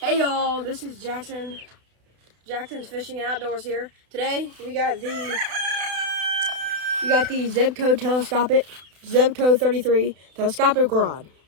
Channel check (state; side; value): late; left; 32 ms